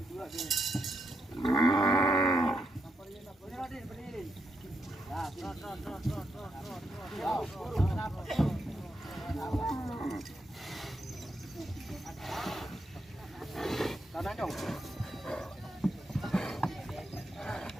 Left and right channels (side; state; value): both; normal; correlation 0.81